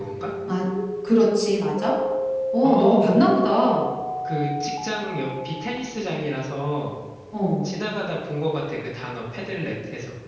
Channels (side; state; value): both; identical; correlation 1.00